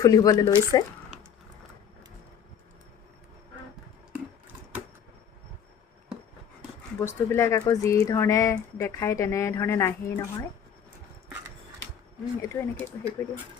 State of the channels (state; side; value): quieter; right; 8.2 dB